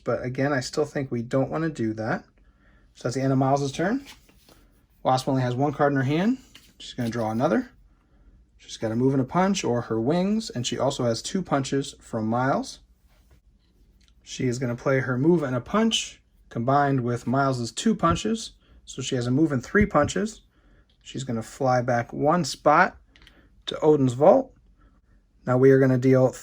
again, I still think we don't want to do that. So that's the end of Miles' turn. Wasp only has 1 card in her hand. She's going to draw another. She's got a move and a punch or her wings, and she also has 2 punches from Miles. She is going to play her move and a punch combined with Miles's 2 punches. So she has a move and 3 punches. She's going to fly back 1 spot to Odin's vault. Now we are going to deal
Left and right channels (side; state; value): both; identical; correlation 1.00